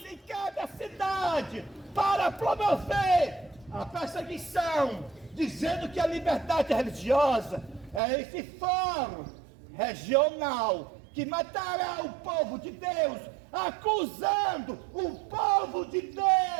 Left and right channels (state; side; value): drops out; left; at 8.0 s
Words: em cada cidade para promover a perseguição, dizendo que a liberdade religiosa é esse fórum regional que matará o povo de Deus, acusando o povo de